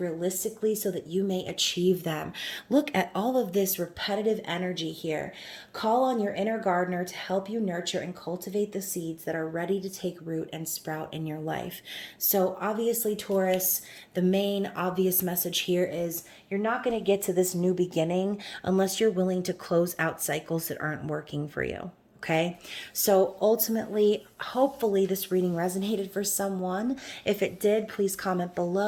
so that you may achieve them. Look at all of this repetitive energy here. Call on your inner gardener to help you nurture and cultivate the seeds that are ready to take root and sprout in your life. So obviously, Taurus, the main obvious message here is you're not going to get to this new beginning unless you're willing to close out cycles that aren't working for you. Okay, so ultimately, hopefully, this reading resonated for someone. If it did, please comment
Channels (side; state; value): both; identical; correlation 1.00